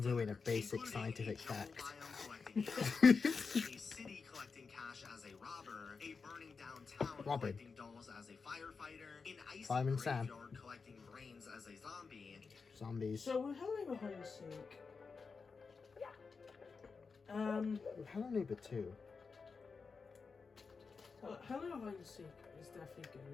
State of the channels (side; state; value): right; quieter; 4.9 dB